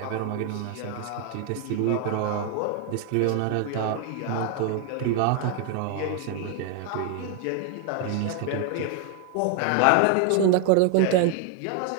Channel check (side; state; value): both; different; correlation 0.01